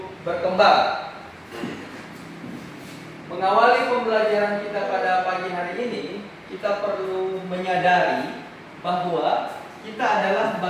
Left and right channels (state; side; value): identical; both; correlation 1.00